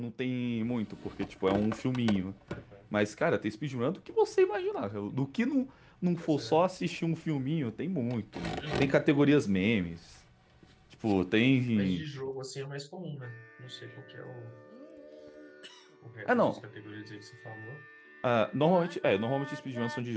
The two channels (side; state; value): both; identical; correlation 1.00